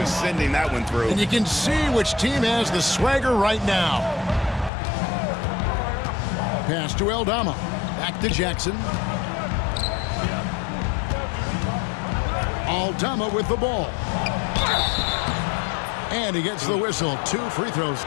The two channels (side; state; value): right; drops out; at 4.7 s